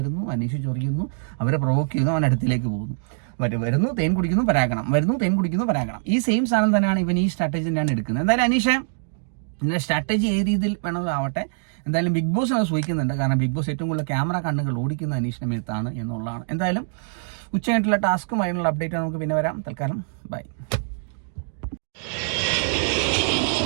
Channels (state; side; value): silent; left; digital silence